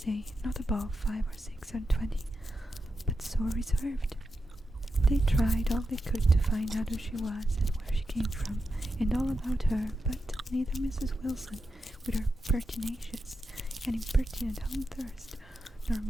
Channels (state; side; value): normal; both; correlation 0.88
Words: not above 5 or 6 and 20, but so reserved. They tried all they could to find out who she was and where she came from, and all about her, but neither Mrs. Wilson, with her pertinacious and impertinent home thirst, nor